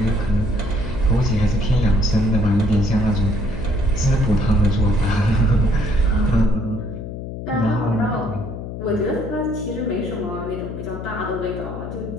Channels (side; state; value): left; noise; hum, 8 dB below the sound